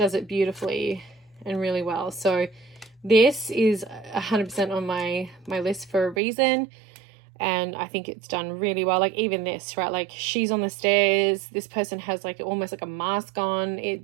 it beautifully and really well. So this is 100% on my list for a reason, and I think it's done really well. Like even this, right, like she's on the stairs, this person has like almost like a mask on.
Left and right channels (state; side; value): drops out; left; at 6.2 s